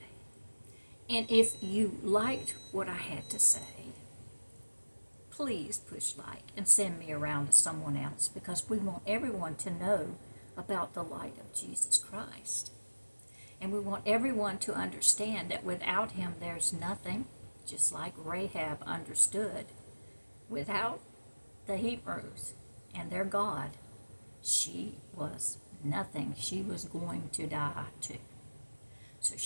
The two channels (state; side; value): inverted; both; correlation -1.00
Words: And if you liked what I had to say, please push like and send me around to someone else, because we want everyone to know about the light of Jesus Christ. And we want everyone to understand that without Him there's nothing, just like Rahab understood. Without the Hebrews and their God, she was nothing. She was going to die too. So